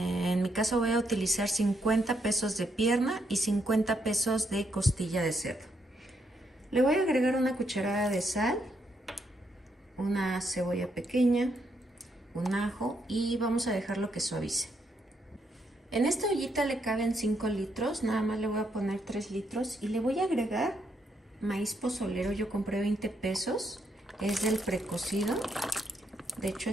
mi caso voy a utilizar 50 pesos de pierna y 50 pesos de costilla de cerdo. Le voy a agregar una cucharada de sal, una cebolla pequeña, un ajo y vamos a dejarlo que suavice. En esta ollita le caben 5 litros, nada más le voy a poner 3 litros y le voy a agregar maíz pozolero. Yo compré 20 pesos, es del precocido. De hecho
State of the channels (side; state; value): both; normal; correlation 0.77